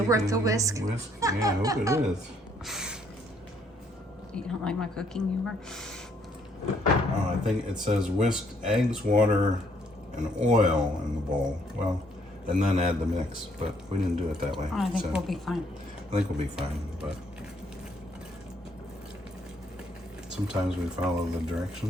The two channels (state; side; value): normal; both; correlation 0.67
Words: worth the whisk? Whisk? Yeah, I hope it is. You don't like my cooking humor? Oh, I think it says whisk eggs, water, and oil in the bowl. Well, and then add the mix, but we didn't do it that way. Oh, I think so we'll be fine. I think we'll be fine, but sometimes we follow the